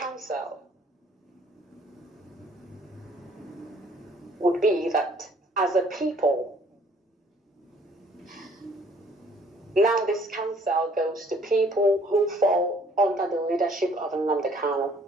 would be that as a people, Now this counsel goes to people who fall under the leadership of Nnamdi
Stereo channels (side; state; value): both; normal; correlation 0.59